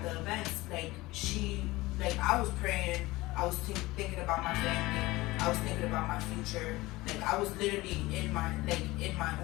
the events, like I was praying, I was thinking about my family, I was thinking about my future, like I was literally in my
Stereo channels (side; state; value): right; quieter; 20.0 dB